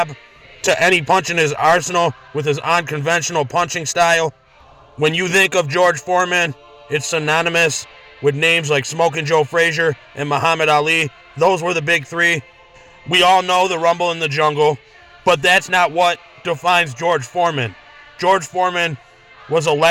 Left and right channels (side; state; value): both; identical; correlation 1.00